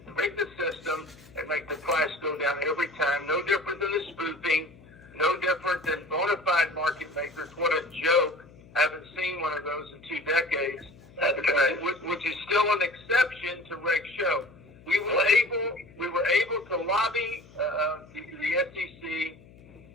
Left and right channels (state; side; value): noise; left; hum, 23 dB below the sound